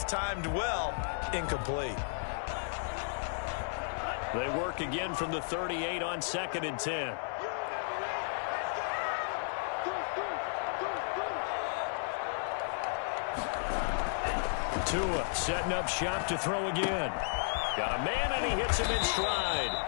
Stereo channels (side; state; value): right; silent; digital silence